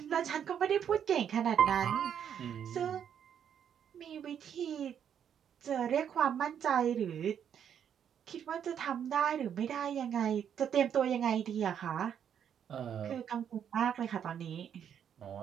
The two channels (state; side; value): quieter; left; 8.7 dB